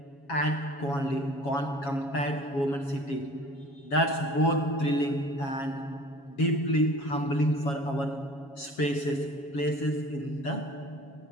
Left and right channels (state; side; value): late; right; 7.2 ms